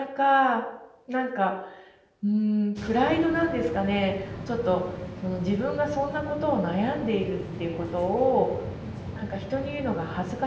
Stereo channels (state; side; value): identical; both; correlation 1.00